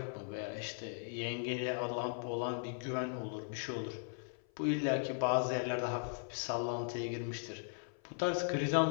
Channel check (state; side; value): silent; right; 52 dB below the other